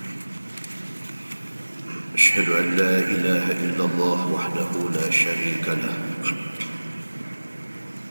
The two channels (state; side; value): inverted; both; correlation -1.00